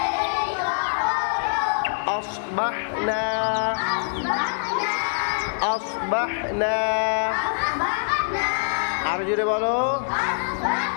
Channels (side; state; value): right; silent; digital silence